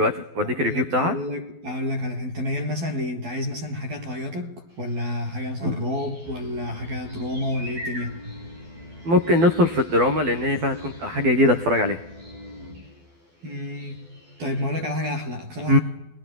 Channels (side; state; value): left; late; 12 ms